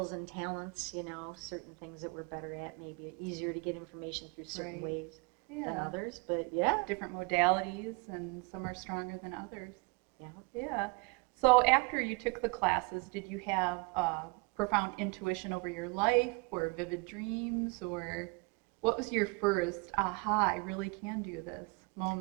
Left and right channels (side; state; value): left; quieter; 28.8 dB